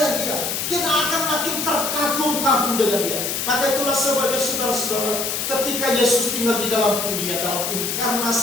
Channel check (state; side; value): noise; left; hiss, 2 dB below the sound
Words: Dia. Kita akan makin terkagum-kagum dengan Dia. Maka itulah sebagai saudara-saudara, ketika Yesus tinggal di dalam dunia, dalam